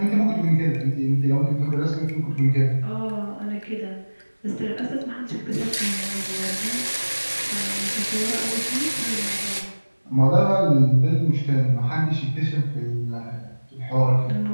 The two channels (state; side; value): inverted; both; correlation -1.00